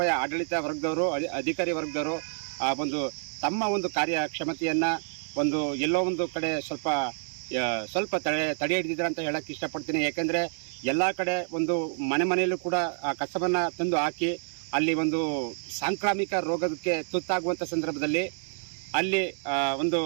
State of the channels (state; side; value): silent; left; 59 dB below the other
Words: ಆಡಳಿತ ವರ್ಗದವರು, ಅಧಿಕಾರಿ ವರ್ಗದವರು ಒಂದು ತಮ್ಮ ಒಂದು ಕಾರ್ಯಕ್ಷಮತೆಯನ್ನು ಒಂದು ಎಲ್ಲೋ ಒಂದು ಕಡೆ ಸ್ವಲ್ಪ ತಡೆ ಹಿಡಿದಿದ್ದಾರೆ ಅಂತ ಹೇಳಕ್ಕೆ ಇಷ್ಟಪಡ್ತೀನಿ. ಯಾಕೆಂದರೆ ಎಲ್ಲ ಕಡೆ ಒಂದು ಮನೆಯಲ್ಲೂ ಕೂಡ ಆ ಕಸವನ್ನು ತಂದು ಹಾಕಿ ಅಲ್ಲಿ ಒಂದು ಸಾಂಕ್ರಾಮಿಕ ರೋಗಕ್ಕೆ ತುತ್ತಾಗುವಂಥ ಸಂದರ್ಭದಲ್ಲಿ ಅಲ್ಲಿ ಒಂದು